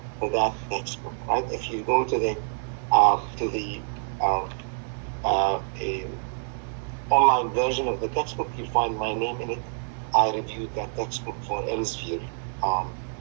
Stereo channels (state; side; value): silent; left; digital silence